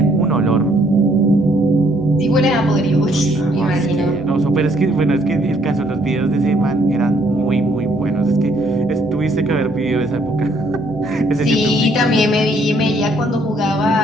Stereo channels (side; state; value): both; normal; correlation 0.67